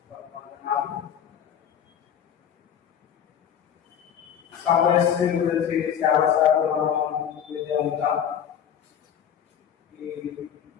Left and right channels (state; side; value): quieter; right; 8.8 dB